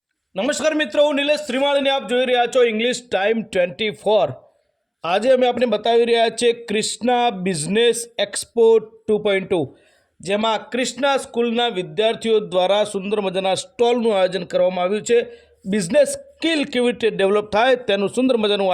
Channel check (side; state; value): both; identical; correlation 1.00